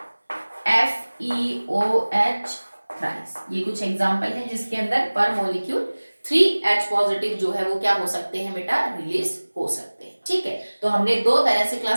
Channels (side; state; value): both; inverted; correlation -1.00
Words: FeOH थ्राइस। ये कुछ एग्जांपल है जिसके अंदर पर मॉलिक्यूल 3 H पॉजिटिव जो है वो क्या हो सकते हैं बेटा? रिलीज हो सकते हैं, ठीक है। तो हमने दो तरह से